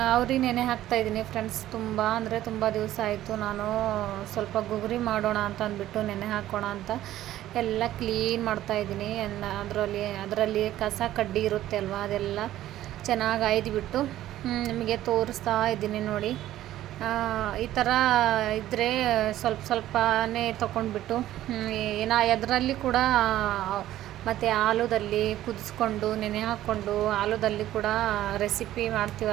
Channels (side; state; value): left; quieter; 13.7 dB